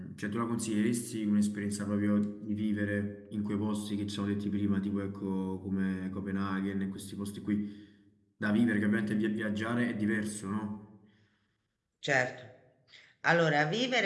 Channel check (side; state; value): both; identical; correlation 1.00